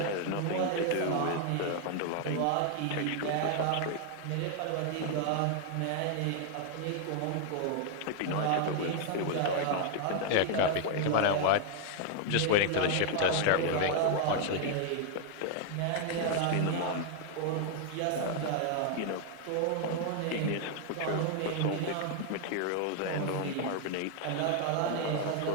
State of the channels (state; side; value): different; both; correlation 0.00